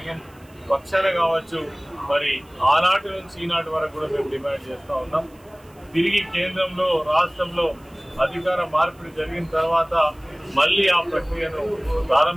పక్షాన కావచ్చు, మరి ఆనాటి నుంచి ఈనాటి వరకు కూడా మేము డిమాండ్ చేస్తూ ఉన్నాం. తిరిగి కేంద్రంలో రాష్ట్రంలో అధికార మార్పిడి జరిగిన తర్వాత మళ్లీ ఆ ప్రక్రియను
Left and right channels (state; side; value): noise; right; hiss, 30 dB below the sound